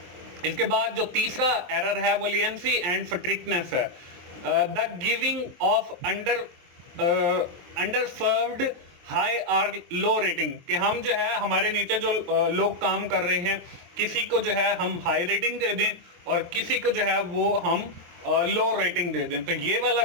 इसके बाद जो तीसरा एरर है वो लियंसी एंड स्ट्रिक्टनेस है। The giving of under served high और लो रेटिंग, कि हम जो है हमारे नीचे जो लोग काम कर रहे हैं किसी को जो है हम हाई रेटिंग दे दें और किसी को जो है वो हम लो रेटिंग दे दें। तो ये वाला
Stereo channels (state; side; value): late; left; 23 ms